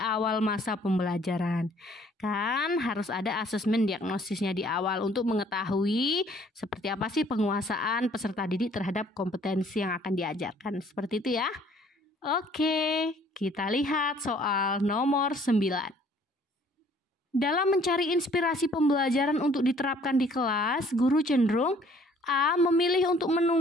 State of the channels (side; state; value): both; normal; correlation 0.58